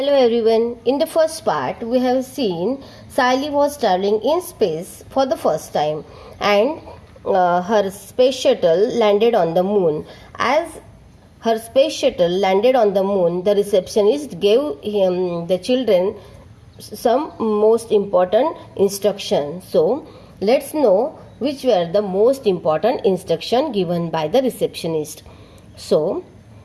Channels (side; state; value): both; identical; correlation 1.00